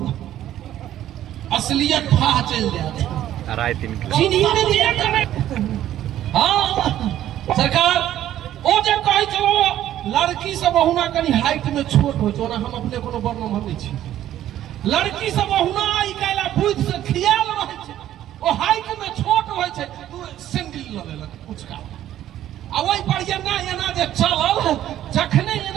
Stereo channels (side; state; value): left; quieter; 12.4 dB